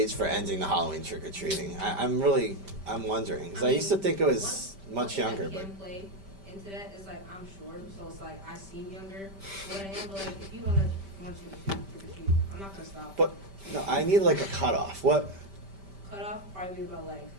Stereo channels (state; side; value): late; left; 5.1 ms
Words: for ending the Halloween trick or treating? I'm wondering because I used to think it was much younger, One thing but that can play into that is like I'm short, so it's like I seem younger. But I am, but like if you want you to trick or treat, I'm not gonna stop. but no, I need like a cutoff. What? Cut off probably about like